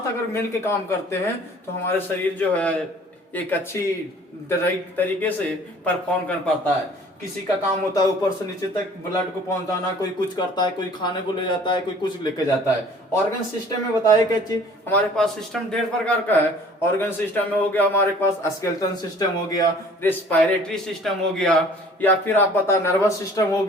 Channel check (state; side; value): normal; both; correlation 0.51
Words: अगर मिल के काम करते हैं तो हमारे शरीर जो है एक अच्छी तरीके से परफॉर्म कर पाता है। किसी का काम होता है ऊपर से नीचे तक ब्लड को पहुंचाना, कोई कुछ करता है, कोई खाने को ले जाता है, कोई कुछ लेके जाता है। ऑर्गन सिस्टम में बताया क्या चीज, हमारे पास सिस्टम ढेर प्रकार का है। ऑर्गन सिस्टम में हो गया हमारे पास स्केलेटल सिस्टम हो गया, रेस्पिरेटरी सिस्टम हो गया, या फिर आप बता नर्वस सिस्टम हो